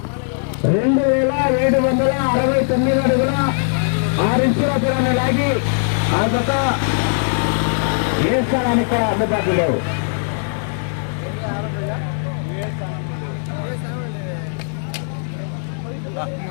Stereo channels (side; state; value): right; silent; 66 dB below the other